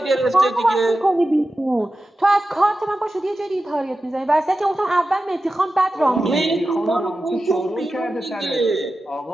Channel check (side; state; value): both; normal; correlation 0.93